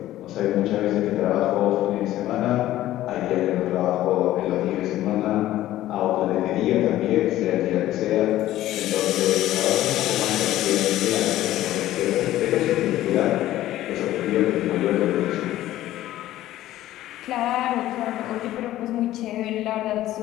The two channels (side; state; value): right; quieter; 14.4 dB